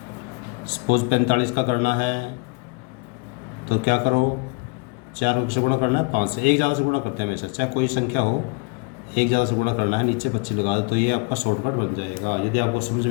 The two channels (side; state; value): right; quieter; 29.1 dB